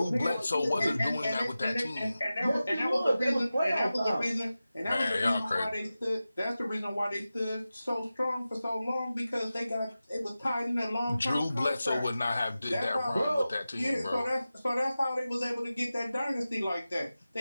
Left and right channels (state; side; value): inverted; both; correlation -0.94